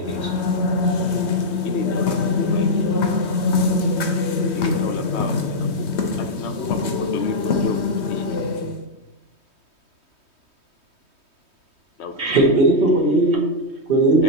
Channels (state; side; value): late; right; 3.2 ms